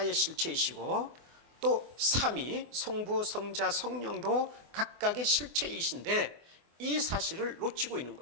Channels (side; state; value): left; late; 24 ms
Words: 실체이시고 또 삼위, 성부, 성자, 성령도 각각의 실체이신데 이 사실을 놓치고 있는